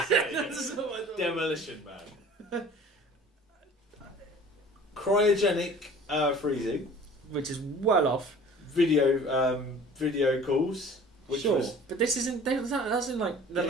what I thought. Demolition Man. Cryogenic freezing, which is well off. Video calls. Which sure, was, but this isn't. That's in like the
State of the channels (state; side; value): normal; both; correlation 0.46